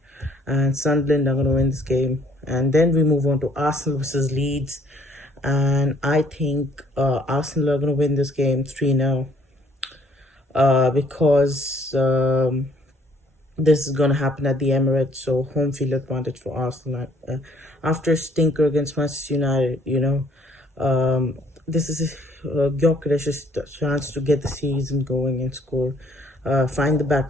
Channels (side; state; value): both; normal; correlation 0.63